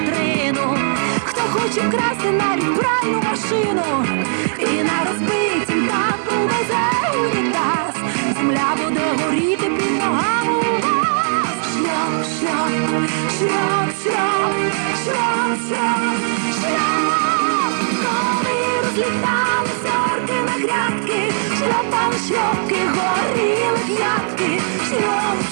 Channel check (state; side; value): silent; left; digital silence